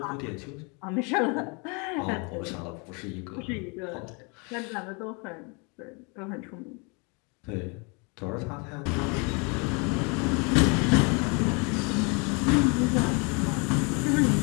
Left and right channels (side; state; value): right; quieter; 32.4 dB